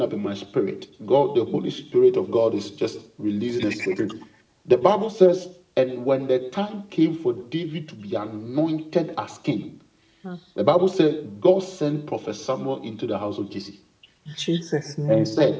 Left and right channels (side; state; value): both; identical; correlation 1.00